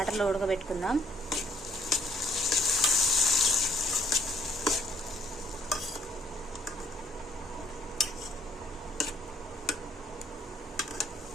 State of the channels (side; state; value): both; normal; correlation 0.65